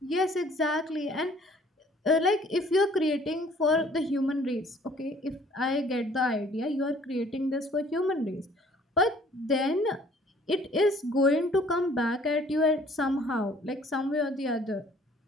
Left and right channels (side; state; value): both; normal; correlation 0.56